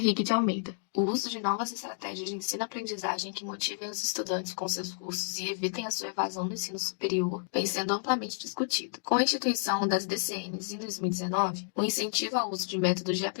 de Almeida. O uso de novas estratégias de ensino-aprendizagem que motivem os estudantes com seus cursos e evitem a sua evasão do ensino superior vem sendo amplamente discutido. Com a instituição das DCNs em 2019, o incentivo ao uso de métodos de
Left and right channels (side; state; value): right; silent; digital silence